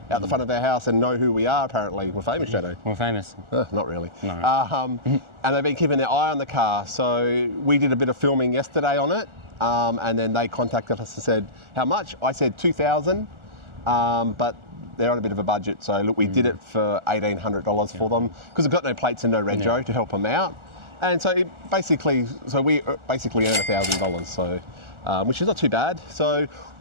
out the front of our house and know who we are. Apparently, we're famous, Shadow. We're famous. Not really. No. And they've been keeping their eye on the car. So we did a bit of filming yesterday on it, and then they contacted us and said, "How much?" I said $2,000, but they're on a bit of a budget. So look, we did it for $1,800 for them because we've got no plates and no rego to help them out. And so we basically earn $1,000, so which is not too bad. So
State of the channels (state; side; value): late; left; 1.4 ms